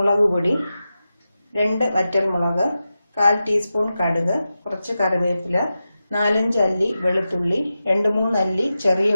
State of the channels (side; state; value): both; inverted; correlation -0.92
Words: പൊടി, 2 വറ്റൽമുളക്, 1/4 ടീസ്പൂൺ കടുക്, കുറച്ച് കറിവേപ്പില, 4-5 അല്ലി വെളുത്തുള്ളി, 2-3 അല്ലി ചെറിയ